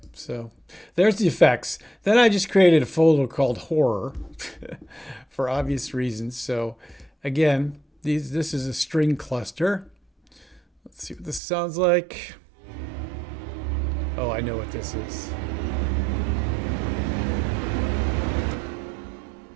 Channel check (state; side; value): drops out; left; at 11.4 s